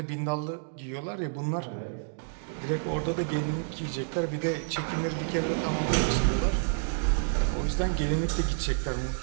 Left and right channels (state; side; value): silent; left; digital silence